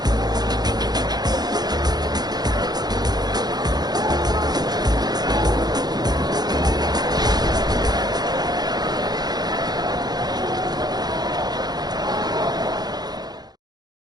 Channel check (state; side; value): late; left; 0.19 ms